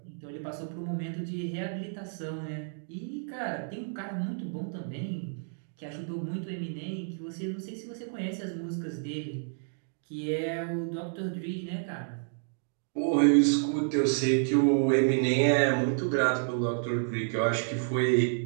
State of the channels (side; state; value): left; silent; digital silence